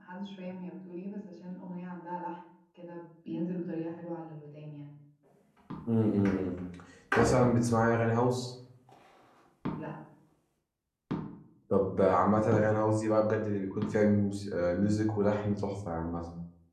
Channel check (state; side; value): identical; both; correlation 1.00